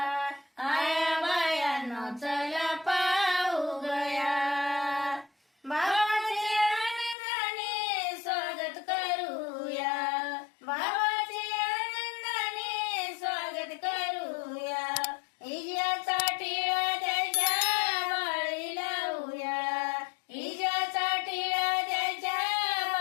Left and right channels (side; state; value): right; drops out; at 7.2 s